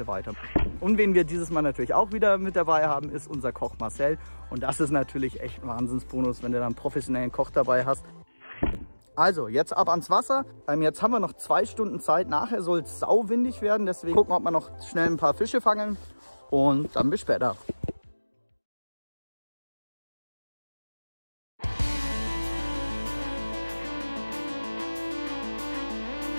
weiter. Und wen wir dieses Mal natürlich auch wieder mit dabei haben, ist unser Koch Marcel. Und das ist natürlich echt ein Wahnsinnsbonus, wenn du dann einen professionellen Koch dabei hast. Also, jetzt ab ans Wasser. Jetzt haben wir noch 2 Stunden Zeit. Nachher soll es sauwindig werden. Deswegen gucken wir, ob wir noch schnell ein paar Fische fangen. Und dann bis später.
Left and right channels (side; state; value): both; inverted; correlation -1.00